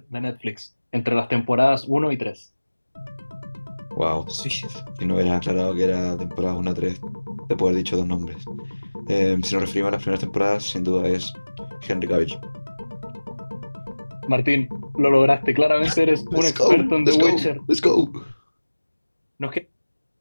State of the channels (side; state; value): both; inverted; correlation -1.00